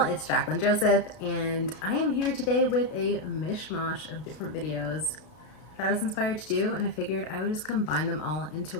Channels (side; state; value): right; late; 32 ms